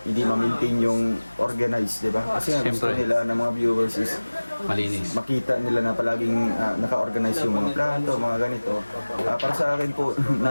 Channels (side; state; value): both; inverted; correlation -1.00